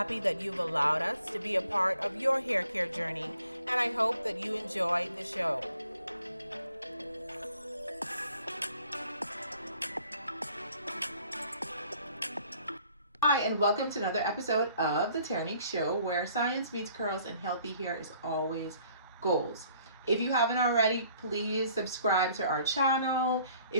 that you've allowed us to be a part of your hair care journey, and I hope that you enjoy the show. Hi, and welcome to another episode of the Terrinique Show, where science meets curls and healthy hair is always goals. If you haven't already, please subscribe to our channel.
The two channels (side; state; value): both; inverted; correlation -0.61